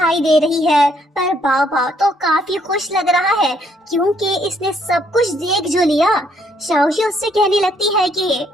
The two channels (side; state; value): both; normal; correlation 0.69